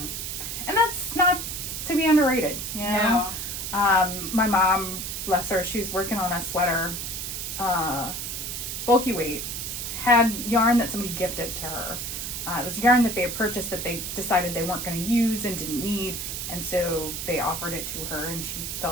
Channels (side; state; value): right; noise; hiss, 5 dB below the sound